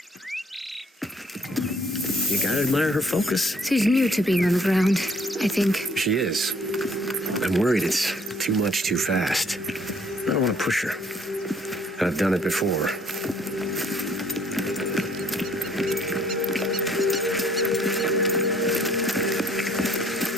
You gotta admire her focus. She's new to being on the ground, I think. She is. I'm worried it's too much too fast. I don't want to push her. I've done it before.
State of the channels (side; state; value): both; normal; correlation 0.61